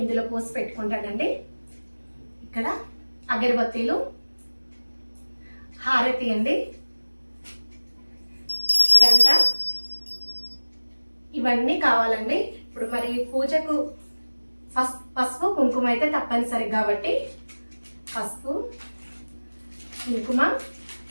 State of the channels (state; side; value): inverted; both; correlation -1.00